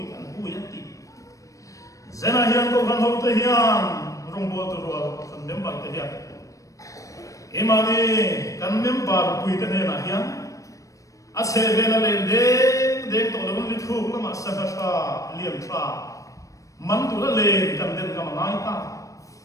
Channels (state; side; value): late; right; 0.16 ms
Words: kan hu ya ti zena hian ko kan ho te hian rong bol to ro kan member te hian emani kan member pui te ne na hian a se vela le de to lo li thu la ma sa ka liam tra man tu la le kan den ka ma ngai ta